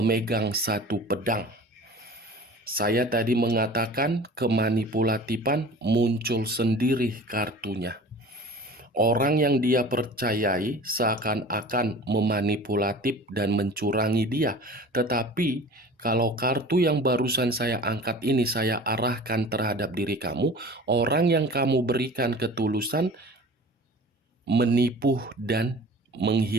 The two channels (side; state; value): both; normal; correlation 0.41